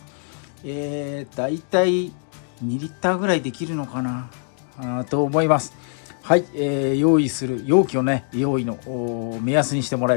だいたい2リッターぐらいできるのかなと思います。はい、用意する容器をね用意の目安にしてもら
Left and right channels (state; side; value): silent; right; 56 dB below the other